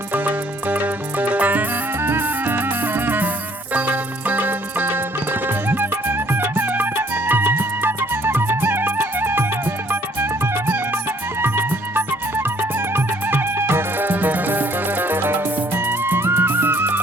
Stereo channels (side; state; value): both; normal; correlation 0.61